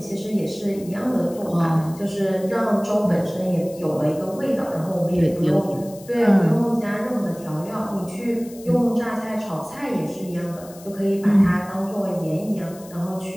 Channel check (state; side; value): noise; left; hiss, 21 dB below the sound